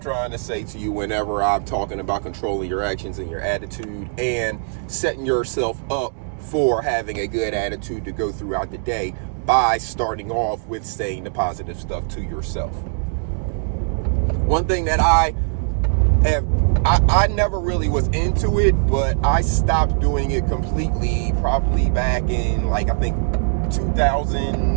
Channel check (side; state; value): left; silent; digital silence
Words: trying to say to you whenever I'm talking about controlling your actions and your attitude and setting yourself up for having a good attitude to go throughout the day by starting off with saying the positive stuff to yourself. One thing that I never really was into it, but I stopped doing it completely probably back in I think